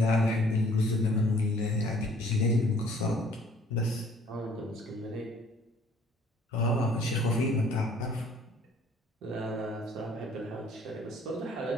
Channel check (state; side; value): normal; both; correlation 0.56